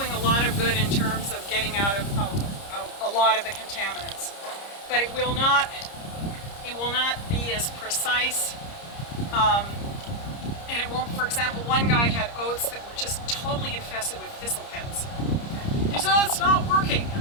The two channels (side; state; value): right; late; 30 ms